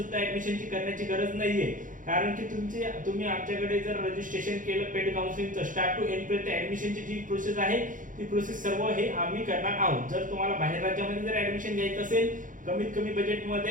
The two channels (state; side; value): late; left; 0.38 ms